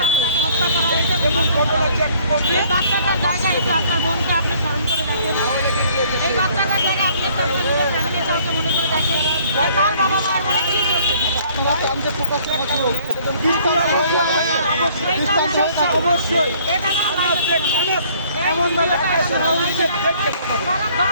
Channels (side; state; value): both; inverted; correlation -0.59